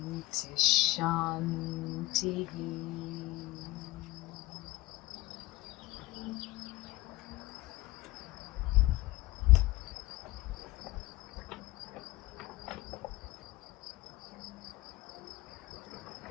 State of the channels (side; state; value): right; quieter; 18.9 dB